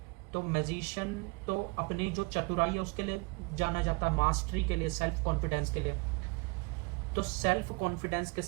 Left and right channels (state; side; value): quieter; left; 29.6 dB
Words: तो मैजिशियन तो अपनी जो चतुराई है उसके लिए जाना जाता है, मास्टरी के लिए, सेल्फ कॉन्फिडेंस के लिए। तो सेल्फ कॉन्फिडेंस के